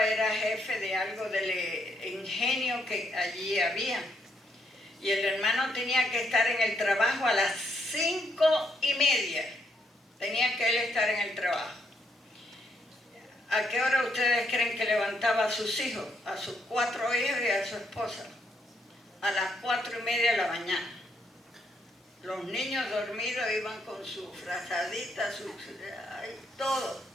era jefe de algo del ingenio que allí había. Y el hermano tenía que estar en el trabajo a las 5:30. Tenía que él estar en el trabajo. ¿A qué hora ustedes creen que levantaba a sus hijos? A sus 4 hijos y a su esposa. A las 4:30 de la mañana. Los niños dormidos iban con su frazadita, todo.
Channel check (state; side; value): normal; both; correlation 0.75